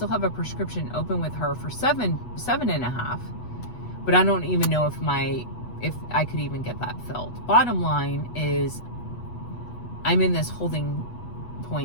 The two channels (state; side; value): late; right; 8.2 ms